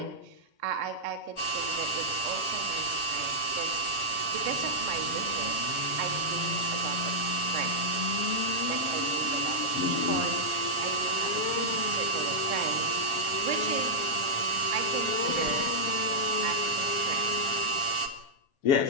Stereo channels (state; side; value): late; right; 7.3 ms